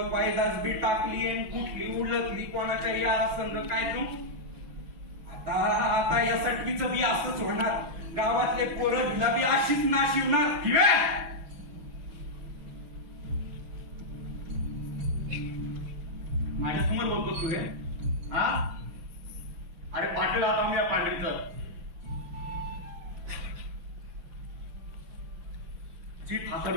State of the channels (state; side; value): late; left; 6.3 ms